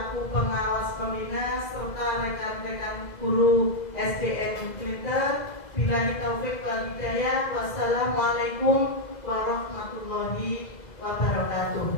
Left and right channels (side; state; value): right; late; 2.0 ms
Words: pengawas pembina serta rekan-rekan guru SDN Glitter. Billahi taufik wal hidayah. Wassalamualaikum warahmatullahi